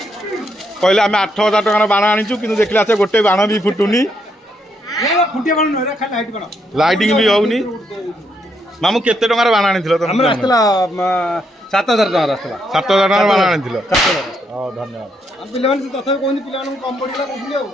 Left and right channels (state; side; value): normal; both; correlation 0.76